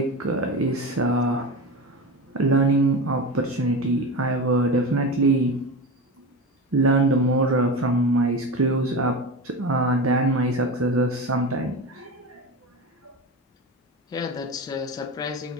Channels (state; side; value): normal; both; correlation 0.25